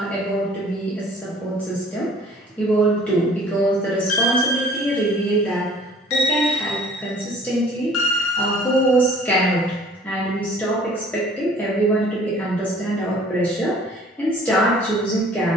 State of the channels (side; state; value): both; normal; correlation 0.52